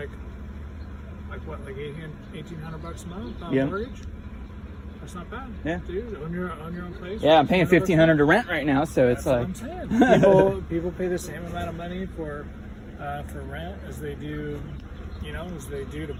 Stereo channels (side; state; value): both; identical; correlation 1.00